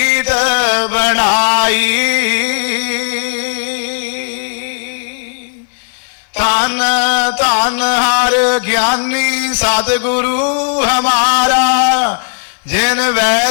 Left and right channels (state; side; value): silent; right; digital silence